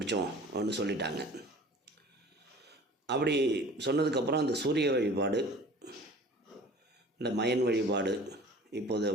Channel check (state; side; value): normal; both; correlation 0.45